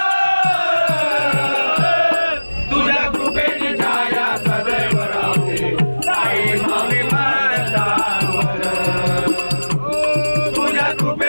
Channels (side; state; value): both; inverted; correlation -1.00